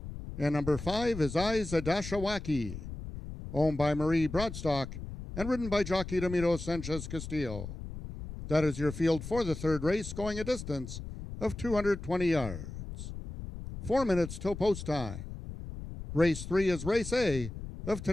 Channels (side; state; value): left; noise; rumble, 9 dB below the sound